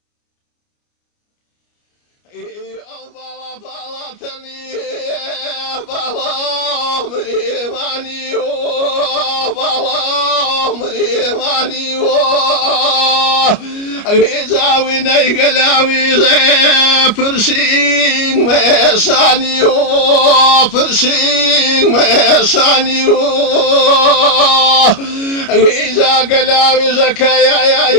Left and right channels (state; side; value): late; right; 29 ms